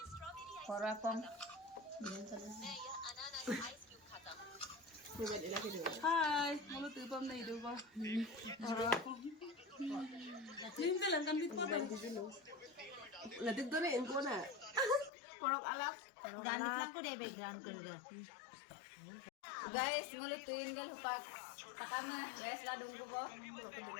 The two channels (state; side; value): drops out; right; at 15.1 s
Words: Porapong. Hai, mau tupam na hidup ba? Porapong. Hindi lang kan dito pa. Latik doon eh, ko na. Porok alak. Guys, ngulutuin gal hupak. Takama, les ladung ko po.